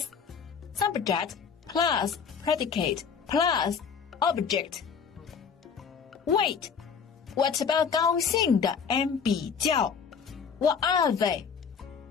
subject plus predicate plus object. Wait, what about 高兴的 and 比较? What are they?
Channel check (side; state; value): right; quieter; 6.4 dB